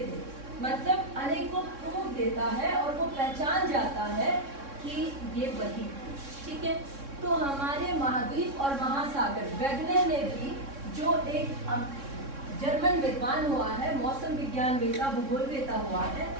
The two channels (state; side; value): late; left; 3.6 ms